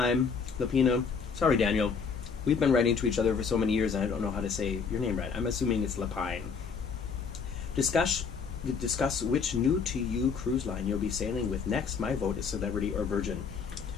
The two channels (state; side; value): quieter; right; 5.7 dB